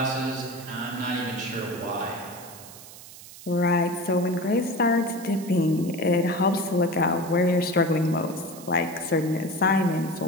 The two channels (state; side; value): noise; right; hiss, 17 dB below the sound